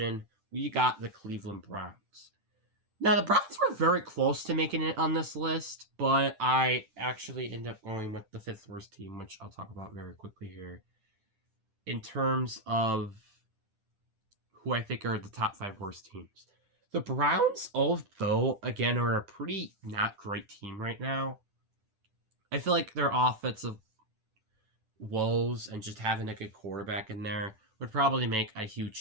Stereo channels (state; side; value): late; left; 10 ms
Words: we got the Cleveland Browns. Now, the Browns were very close to making it on this list, but I actually ended up going with the 5th worst team, which I'll talk about very quickly here. In terms of who I think are the top 5 worst teams. The Browns, although, again, are a pretty not great team right now, I feel like their offensive woes and just having a good quarterback in there would probably make a